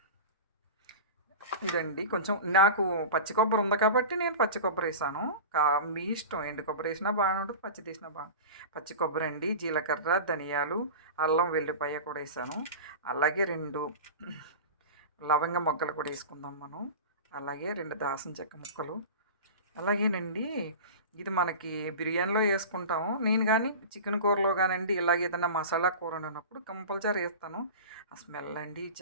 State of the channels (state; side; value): inverted; both; correlation -0.31